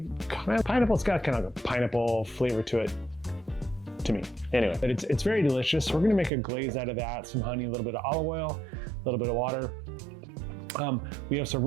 kind of pineapple. It's got kind of a pineapple flavor to it, to me. Anyway, but it's very delicious. We're going to make a glaze out of that, some honey, a little bit of olive oil, a little bit of water. We have some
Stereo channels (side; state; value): left; drops out; at 6.3 s